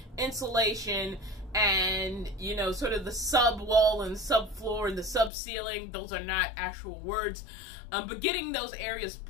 insulation, and, you know, sort of the sub wall and sub floor and the sub ceiling. Those are not actual words. But getting those areas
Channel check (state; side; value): drops out; right; at 5.3 s